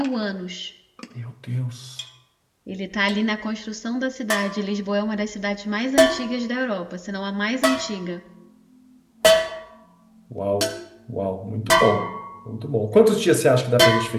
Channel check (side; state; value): both; identical; correlation 1.00